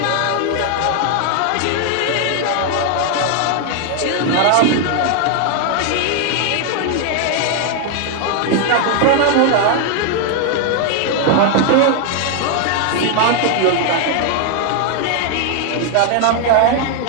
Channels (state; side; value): different; both; correlation 0.00